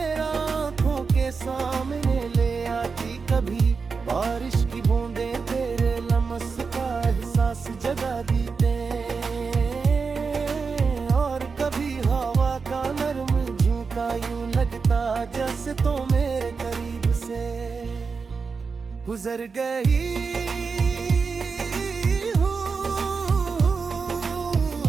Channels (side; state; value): left; quieter; 5.0 dB